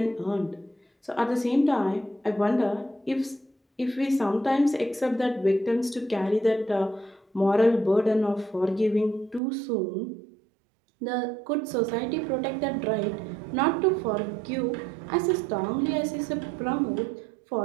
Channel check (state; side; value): drops out; left; at 9.4 s